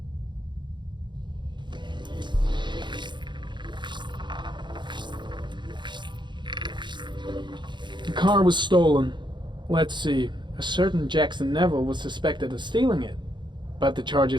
The car was stolen. Let's see. A certain Jackson Neville was suspected of stealing it, but the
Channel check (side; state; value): left; late; 0.22 ms